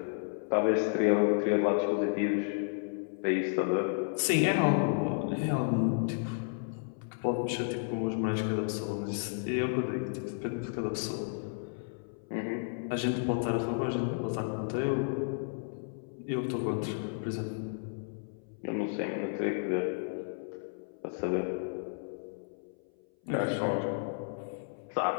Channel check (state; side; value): silent; right; 56 dB below the other